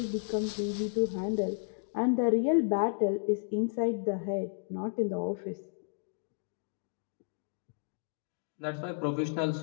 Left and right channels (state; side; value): silent; right; digital silence